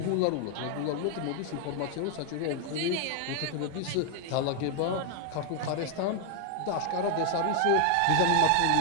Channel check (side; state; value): both; different; correlation 0.00